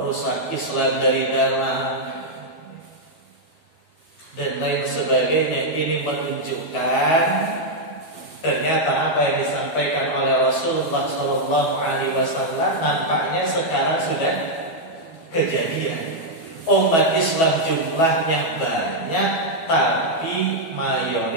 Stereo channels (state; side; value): late; right; 12 ms